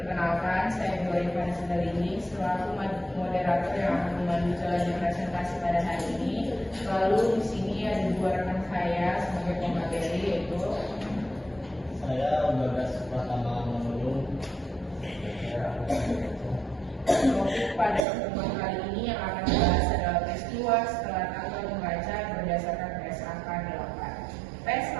saya Bu Rifana Sindarini selaku moderator yang akan memandu jalannya presentasi pada hari ini. Lalu di sini ada dua rekan saya sebagai pemateri, yaitu saya Bagas Pratama Manulung. Topik pada pertemuan kali ini yang akan dibahas adalah peristiwa setelah tanggal membaca berdasarkan PSAK 8.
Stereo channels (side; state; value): left; drops out; at 18.0 s